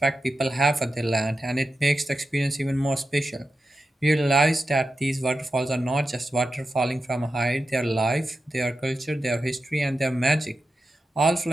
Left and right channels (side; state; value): both; normal; correlation 0.90